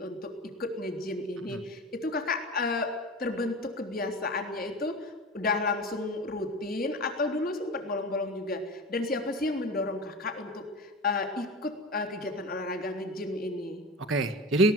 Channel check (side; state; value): both; normal; correlation 0.31